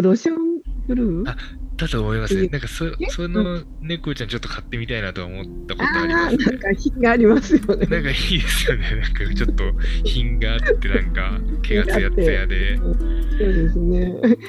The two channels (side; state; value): both; identical; correlation 1.00